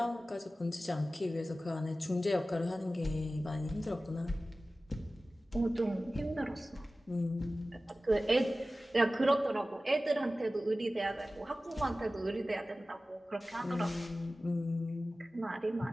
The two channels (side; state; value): both; normal; correlation 0.96